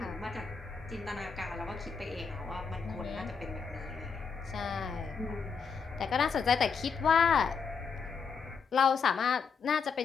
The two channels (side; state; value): right; quieter; 5.8 dB